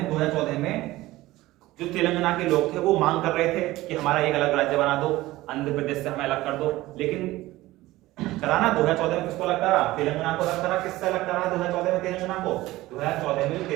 2014 में जो तेलंगाना के लोग थे वो मांग कर रहे थे कि हमारा एक अलग राज्य बना दो, आंध्र प्रदेश से हमें अलग कर दो। लेकिन कराना 2014 में किसको अलग करा? तेलंगाना को अलग करा। किससे अलग करा 2014 में तेलंगाना? तेलंगाना को 2014 में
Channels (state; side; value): quieter; left; 17.7 dB